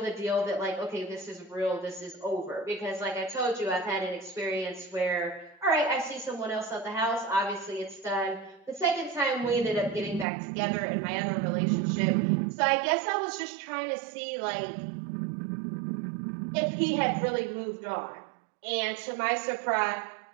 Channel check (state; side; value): drops out; left; at 10.2 s